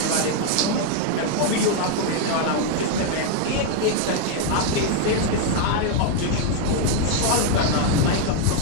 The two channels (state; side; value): different; both; correlation 0.00